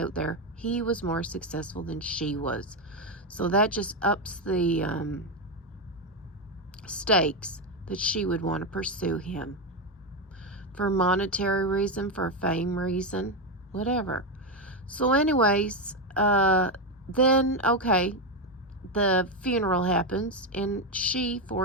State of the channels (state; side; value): normal; both; correlation 0.09